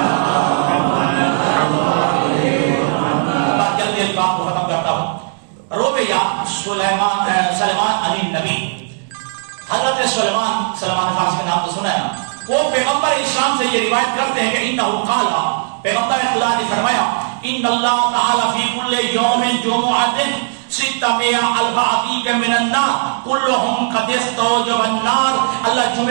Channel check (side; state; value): left; silent; 68 dB below the other